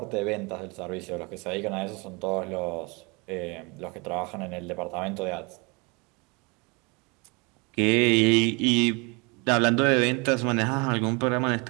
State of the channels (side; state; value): left; quieter; 30.1 dB